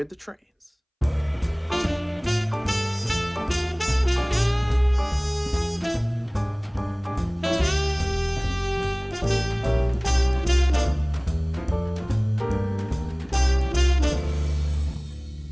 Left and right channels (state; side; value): identical; both; correlation 1.00